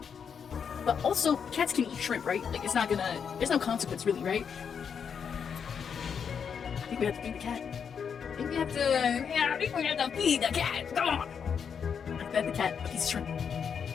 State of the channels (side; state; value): right; quieter; 7.0 dB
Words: But also, cats can eat shrimp, right? Like, it's not gonna... There's no consequence, really, right? I think we have to feed the cat. I think we have to feed the cat. Come on! I fed the cat a piece of shrimp.